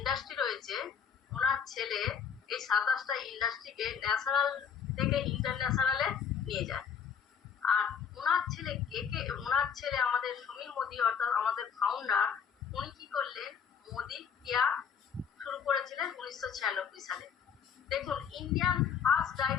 রয়েছে, ওনার ছেলে এই 27টা ইন্ডাস্ট্রিকে ন্যাশনাল থেকে ইন্টারন্যাশনালে নিয়ে যায়। আর ওনার ছেলে ওনার ছেলে আমাদের সমীর মোদি অর্থাৎ আমাদের ফাউন্ডার, উনি কি করলেন, মোদি কেয়ার শুরু করেছিলেন 1996 সালে। দেখুন, Indian first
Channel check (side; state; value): right; quieter; 7.3 dB